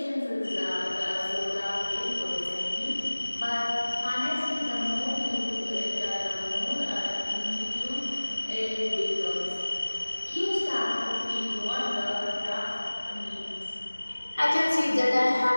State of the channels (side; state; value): both; inverted; correlation -1.00